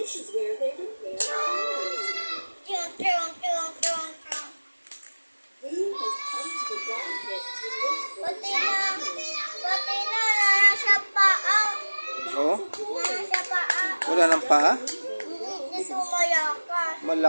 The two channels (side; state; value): both; inverted; correlation -1.00